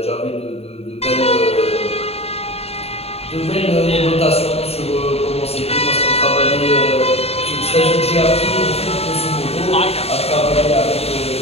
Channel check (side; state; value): right; late; 0.29 ms